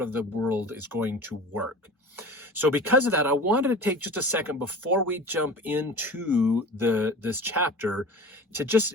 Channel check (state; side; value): normal; both; correlation 0.37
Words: of the world is going to work. So because of that, I wanted to take just a second before we jump into this chapter to just